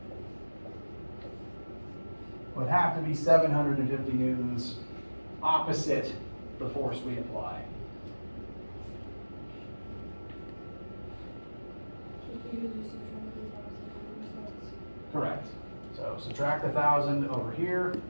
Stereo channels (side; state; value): both; inverted; correlation -1.00